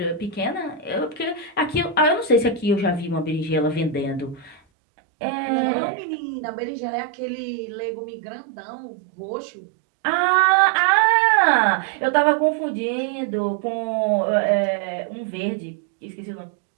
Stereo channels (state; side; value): drops out; left; at 4.6 s